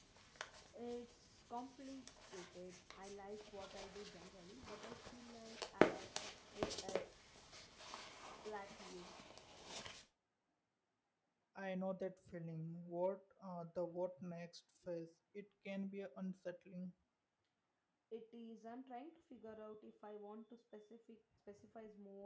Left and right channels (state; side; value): identical; both; correlation 1.00